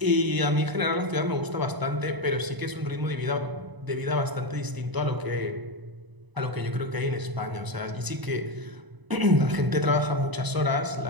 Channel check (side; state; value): left; late; 1.0 ms